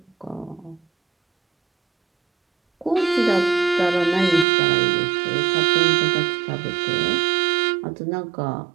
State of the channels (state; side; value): drops out; left; at 4.5 s